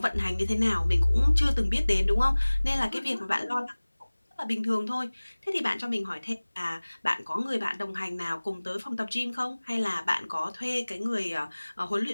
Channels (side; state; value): both; inverted; correlation -1.00